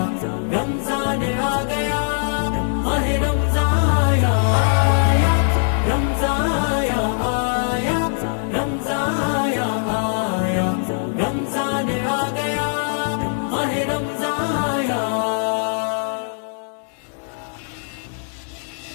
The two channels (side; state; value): right; silent; 65 dB below the other